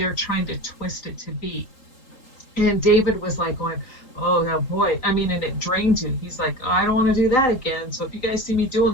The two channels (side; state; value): right; late; 3.8 ms